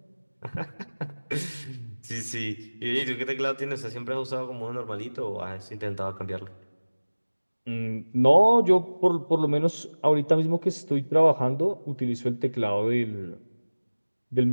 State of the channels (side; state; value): both; inverted; correlation -1.00